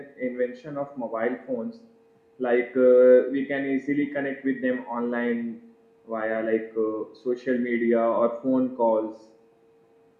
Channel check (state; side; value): identical; both; correlation 1.00